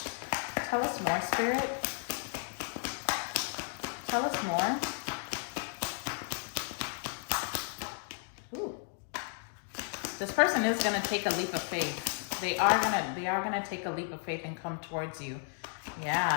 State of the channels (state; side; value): silent; right; 55 dB below the other